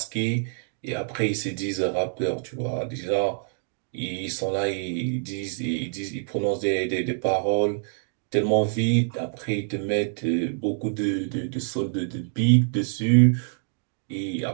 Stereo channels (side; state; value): left; silent; digital silence